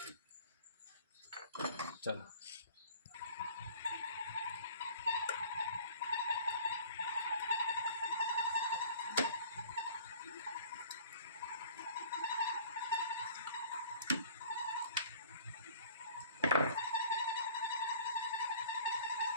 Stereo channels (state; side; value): inverted; both; correlation -0.47